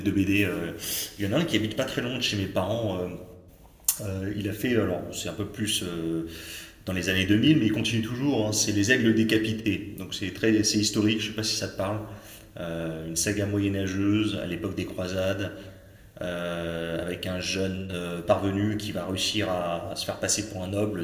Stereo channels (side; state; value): both; identical; correlation 1.00